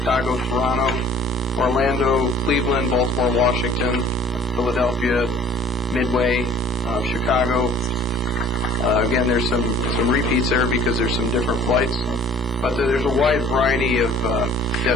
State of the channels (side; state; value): both; normal; correlation 0.51